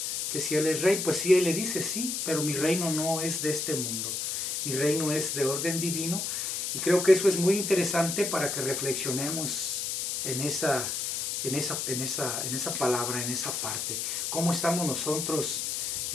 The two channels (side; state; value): left; noise; hiss, 1 dB below the sound